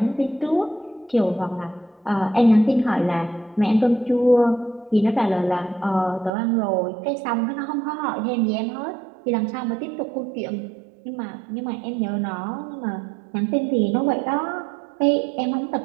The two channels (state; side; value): drops out; left; at 6.3 s